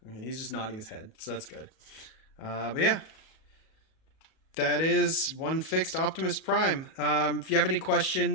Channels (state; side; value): late; right; 37 ms